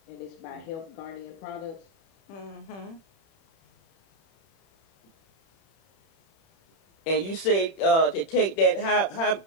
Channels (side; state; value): right; late; 31 ms